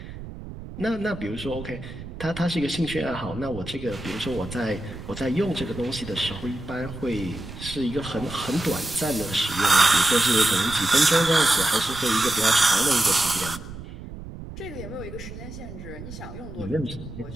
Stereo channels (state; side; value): noise; right; rumble, 12 dB below the sound